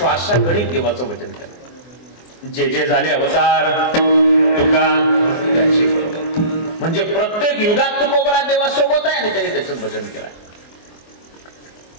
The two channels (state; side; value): late; right; 24 ms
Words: देवाचं भजन केलंय. जे जे झाले अवतार तुका त्याची बरोबर म्हणजे प्रत्येक युगात तुकोबराय देवासोबत आहे आणि त्याने त्याचं भजन केलंय.